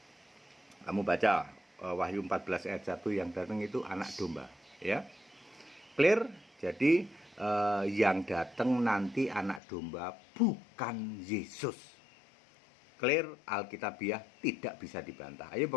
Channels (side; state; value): right; drops out; at 9.6 s